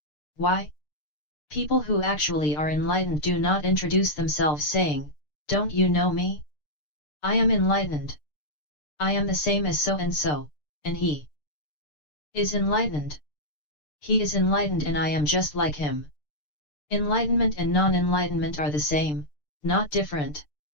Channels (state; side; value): late; right; 6.7 ms